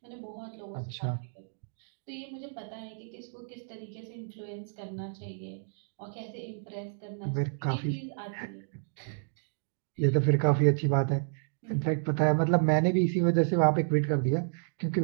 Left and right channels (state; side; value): silent; left; digital silence